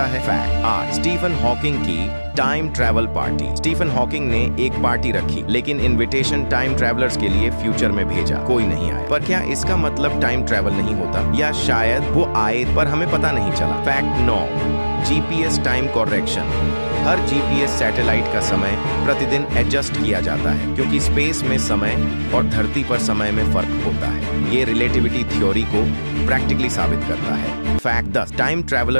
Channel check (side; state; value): both; inverted; correlation -1.00